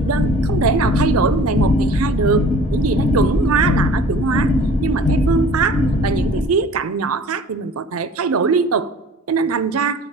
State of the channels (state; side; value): normal; both; correlation 0.46